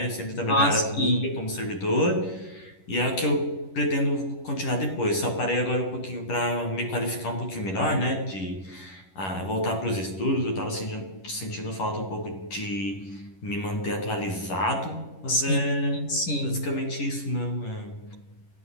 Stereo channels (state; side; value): late; right; 11 ms